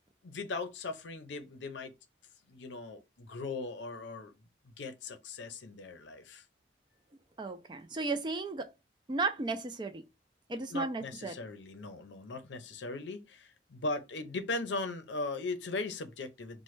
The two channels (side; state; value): both; normal; correlation 0.12